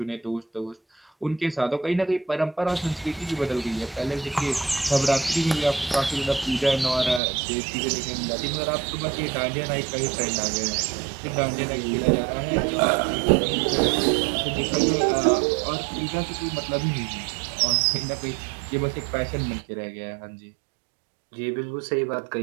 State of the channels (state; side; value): drops out; left; at 7.2 s